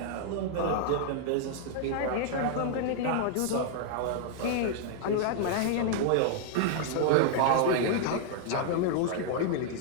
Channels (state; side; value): different; both; correlation -0.01